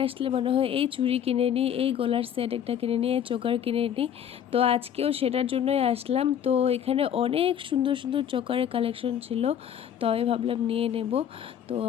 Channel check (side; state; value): right; quieter; 9.3 dB